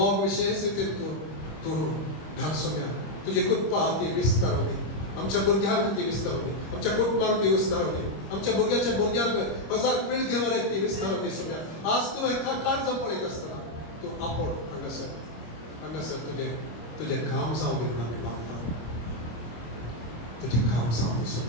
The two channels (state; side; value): late; right; 25 ms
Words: विशेष रितीन तूं घाल सोम्या तुजी कृपा ती विस्तारूं दी आमच्या भुरग्यांक ती विस्तारूं दी आमच्या कुटुंबाक ती विस्तारूं दी आमच्या भुरग्याच्या भुरग्यांक हजार पिळगी वरेक ती विस्तारूं दी सोम्या आज तुवें काळजां पळयत आसतना तूं आपोड हांगासर तुजे घाम जावं दी म्हणून आमी मागता तुजे घाम जावं दी